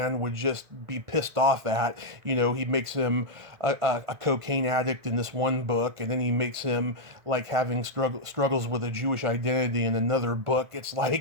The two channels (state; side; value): late; left; 1.5 ms